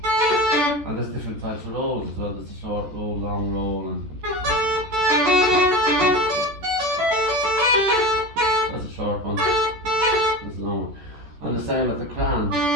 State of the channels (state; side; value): late; left; 14 ms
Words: And there's different types of rolls as well. There's a short roll, long roll, and that's a short one. There's a long one. And the same with the crown.